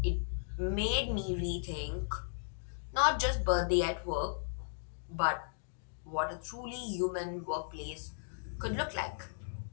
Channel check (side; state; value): right; silent; digital silence